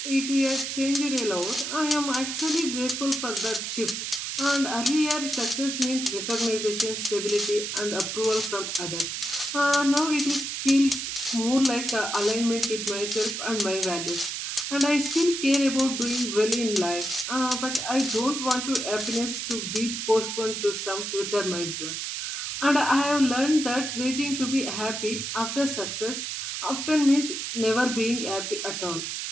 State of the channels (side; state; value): right; noise; hiss, 4 dB below the sound